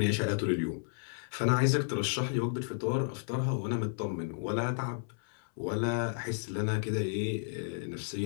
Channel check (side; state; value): right; silent; 56 dB below the other